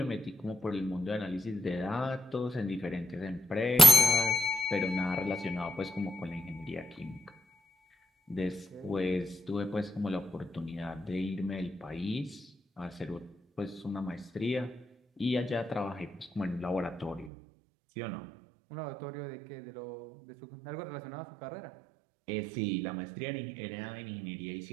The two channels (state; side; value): drops out; left; at 17.3 s